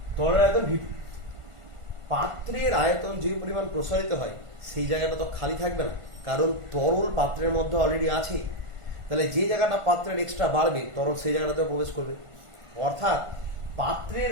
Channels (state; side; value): late; left; 1.5 ms